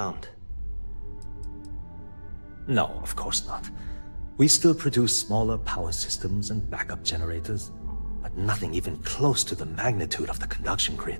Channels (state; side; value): inverted; both; correlation -1.00